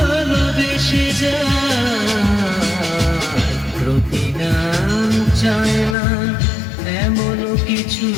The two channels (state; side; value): drops out; right; at 6.0 s